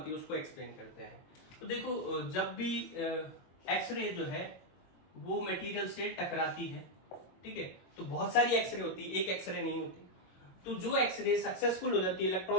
है उसको एक्सप्लेन करते हैं। तो देखो जब भी एक्सरे जो है वो मटेरियल से टकराती है, ठीक है, तो बहुत सारी एक्सरे होती है, एक एक्सरे नहीं होती। तो जो एक्सरे सक्सेसफुल हो जाती है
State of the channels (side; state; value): right; late; 22 ms